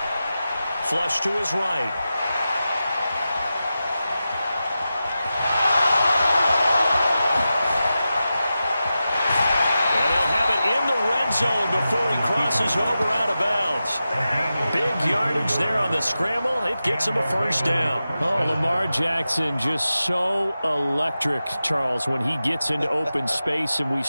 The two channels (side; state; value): both; inverted; correlation -0.92